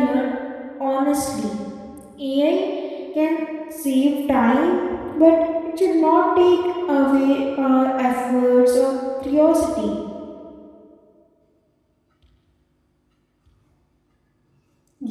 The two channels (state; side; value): identical; both; correlation 1.00